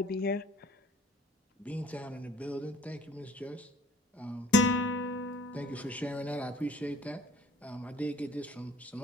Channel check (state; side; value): normal; both; correlation 0.51